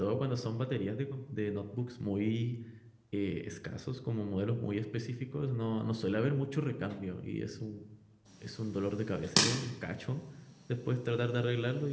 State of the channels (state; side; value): identical; both; correlation 1.00